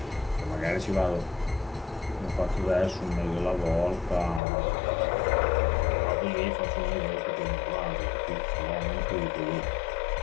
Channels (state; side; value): drops out; right; at 4.4 s